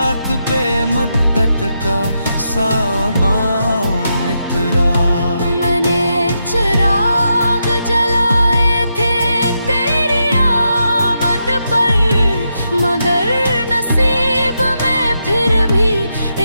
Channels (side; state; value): both; inverted; correlation -0.84